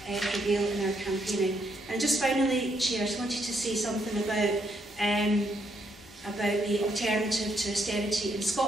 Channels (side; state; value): both; normal; correlation 0.75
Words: prevail in our campaigning. And just finally, Chair, I just wanted to say something about the alternative to austerity in